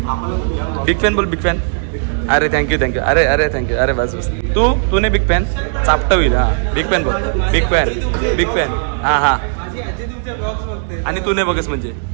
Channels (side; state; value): left; silent; digital silence